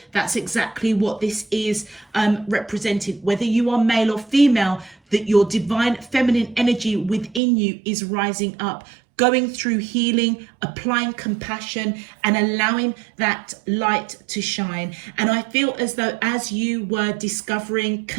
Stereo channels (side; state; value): left; drops out; at 7.4 s